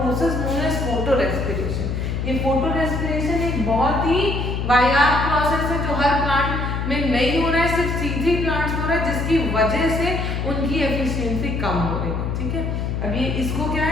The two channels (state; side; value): noise; left; hum, 2 dB below the sound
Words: known as photorespiration। ये फोटोरेस्पिरेशन एक बहुत ही वाहियात process है जो हर plant में नहीं हो रहा है, सिर्फ C3 प्लांट्स हो रहा है, जिसकी वजह से उनकी एफिशिएंसी कम हो रही है। ठीक है, अब ये इसको क्या